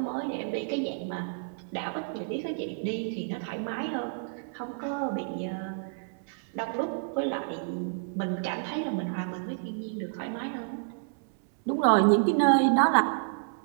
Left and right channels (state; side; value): silent; left; 58 dB below the other